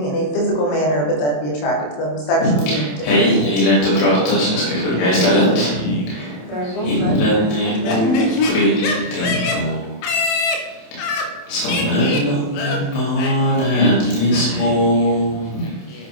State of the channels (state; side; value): late; right; 27 ms